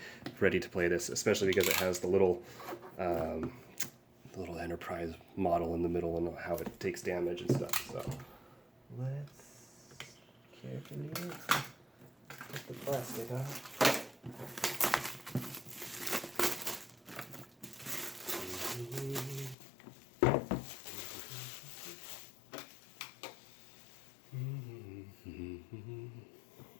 ready to play this, especially because it has the little Enterprise model in the middle and how it takes damage and stuff. So let's carefully get the plastic off.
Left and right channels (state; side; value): drops out; right; at 19.6 s